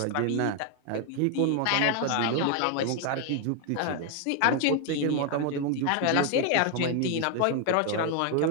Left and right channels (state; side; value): different; both; correlation 0.01